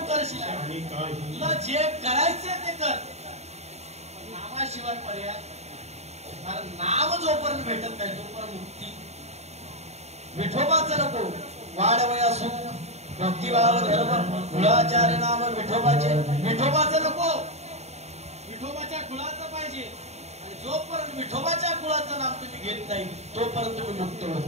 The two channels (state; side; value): late; left; 0.32 ms